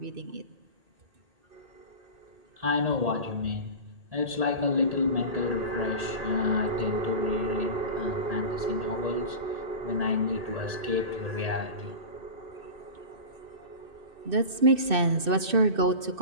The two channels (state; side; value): late; left; 2.6 ms